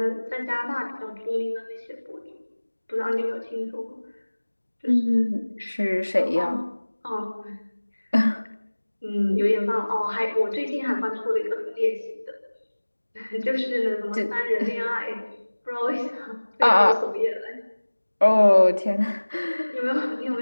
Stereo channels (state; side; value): inverted; both; correlation -1.00